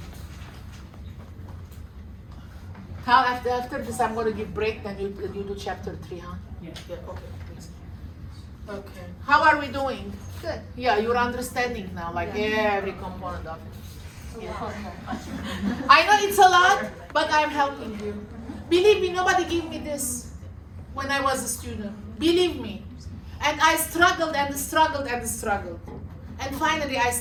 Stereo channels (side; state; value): both; identical; correlation 1.00